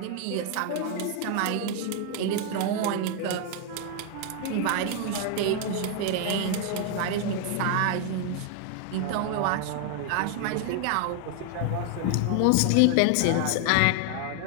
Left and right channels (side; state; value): both; different; correlation 0.00